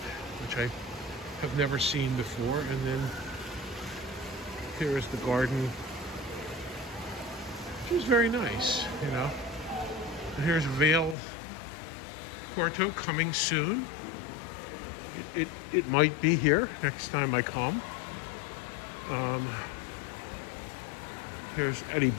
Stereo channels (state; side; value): drops out; right; at 11.2 s